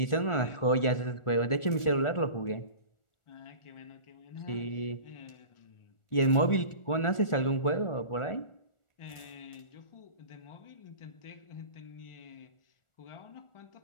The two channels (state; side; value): late; right; 1.4 ms